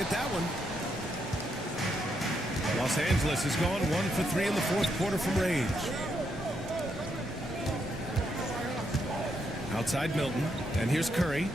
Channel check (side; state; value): both; normal; correlation 0.79